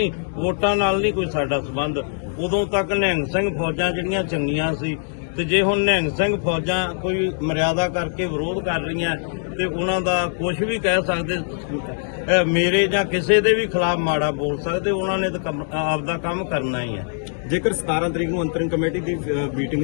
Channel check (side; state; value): right; silent; digital silence